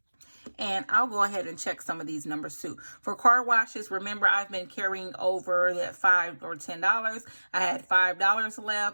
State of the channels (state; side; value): inverted; both; correlation -1.00